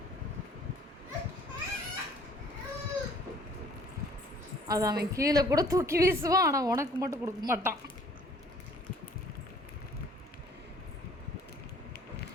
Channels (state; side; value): normal; both; correlation 0.55